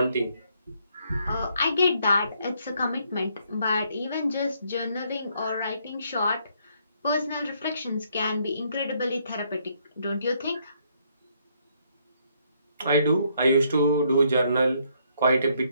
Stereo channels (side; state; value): both; inverted; correlation -0.71